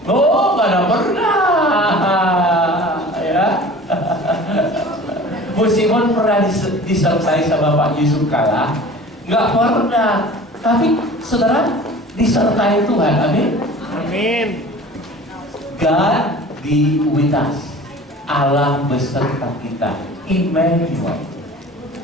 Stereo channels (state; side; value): normal; both; correlation 0.42